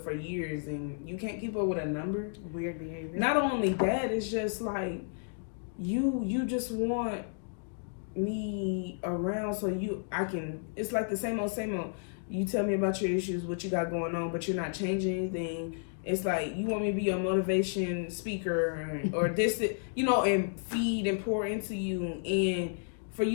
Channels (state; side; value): silent; right; digital silence